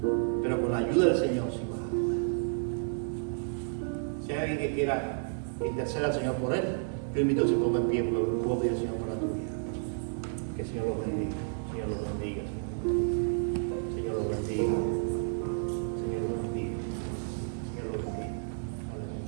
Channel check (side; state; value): left; silent; digital silence